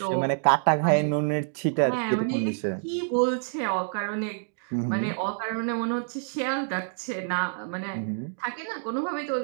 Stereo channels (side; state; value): left; silent; digital silence